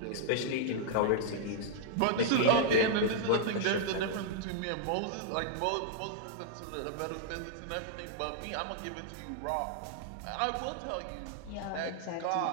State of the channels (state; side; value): different; both; correlation -0.01